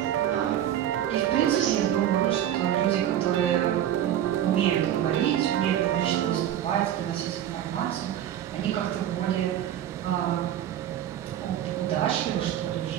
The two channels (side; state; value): left; quieter; 11.2 dB